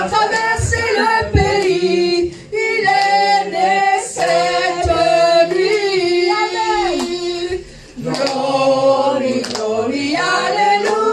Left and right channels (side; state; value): both; identical; correlation 1.00